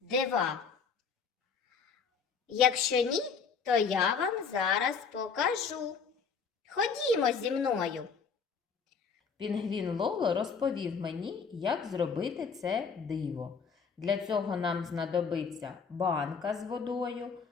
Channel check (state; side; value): quieter; right; 5.7 dB